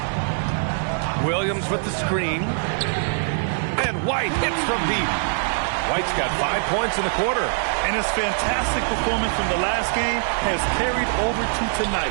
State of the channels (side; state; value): left; silent; digital silence